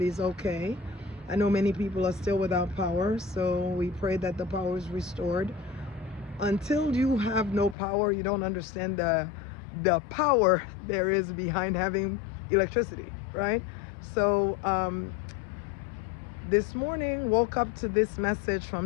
okay. I know many people are still without power, so we pray that the power is restored. Until you have no power, you don't understand the power there is behind having electricity, right? So this morning woke up to this message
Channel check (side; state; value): right; drops out; at 7.8 s